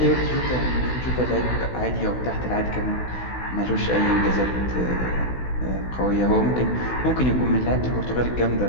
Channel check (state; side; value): late; right; 16 ms